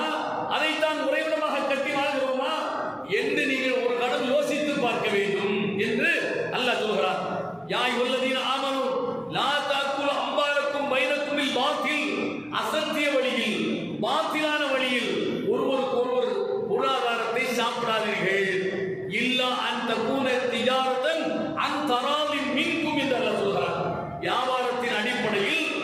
அதைத்தான் உறைவிடமாக கட்டி வாழ்கிறோமா என்று நீங்கள் ஒரு கணம் யோசித்து பார்க்க வேண்டும் என்று அல்லாஹ் சொல்கிறார். யா அய்யுஹல்லதீன ஆமனூ லா தஅக்குலு அம்வாலக்கும் பைனக்குமில் பாத்தில், அசத்திய வழியில், பாத்திலான வழியில் ஒருவருக்கு ஒருவர் பொருளாதாரத்தை சாப்பிடாதீர்கள். இல்லா அன் தகூன திஜாரத்தன் அன் தராலின் மின்கும் என்று அல்லாஹ் சொல்கிறார். வியாபாரத்தின் அடிப்படையில்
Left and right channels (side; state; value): both; identical; correlation 1.00